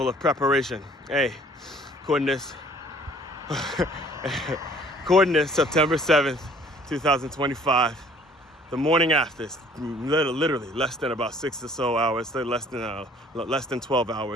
of preparation. Hey, coordinates. Coordinates, September 7th, 2025. The morning after, it's literally less than about 6 or so hours, less than 12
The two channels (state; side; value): normal; both; correlation 0.55